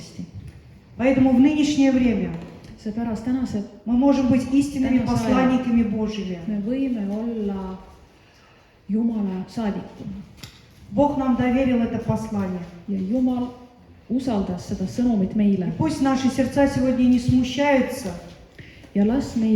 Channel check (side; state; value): both; identical; correlation 1.00